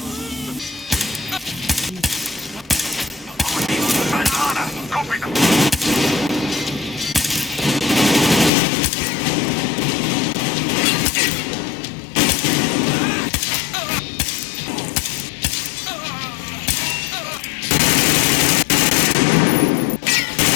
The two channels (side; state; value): right; drops out; at 8.5 s